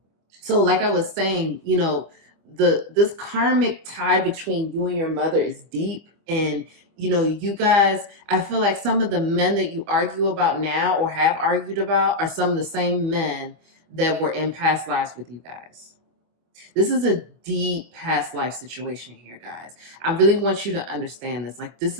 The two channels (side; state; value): left; late; 25 ms